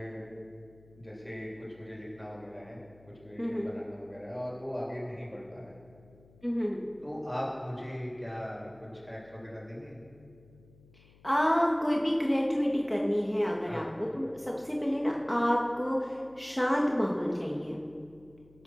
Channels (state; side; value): noise; left; hum, 26 dB below the sound